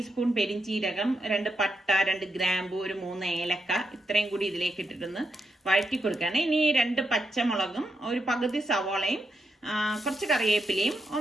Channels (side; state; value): both; normal; correlation 0.83